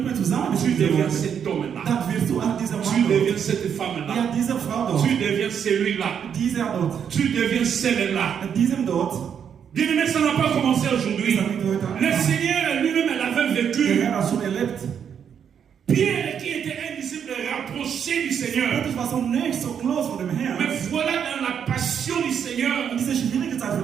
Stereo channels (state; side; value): quieter; left; 7.9 dB